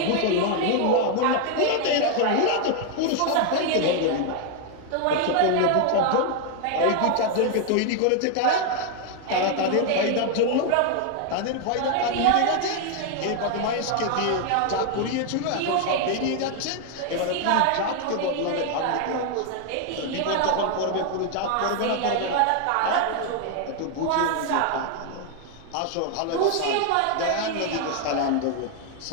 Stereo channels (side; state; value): both; different; correlation 0.00